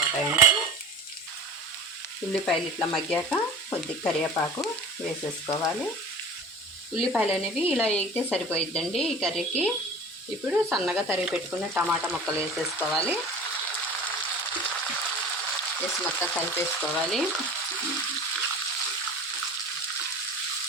ఉల్లిపాయలు ఇట్లా మగ్గాక కొద్దిగా కరివేపాకు వేసేసుకోవాలి. ఉల్లిపాయలు అనేవి ఇలా వేగితే సరిపోయిద్దండి ఈ కర్రీకి. ఇప్పుడు సన్నగా తరిగి పెట్టుకున్న టమాటా ముక్కలు వేసేసుకోవాలి. వేసి మొత్తం కలిపేసుకోవాలి.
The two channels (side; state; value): both; normal; correlation 0.37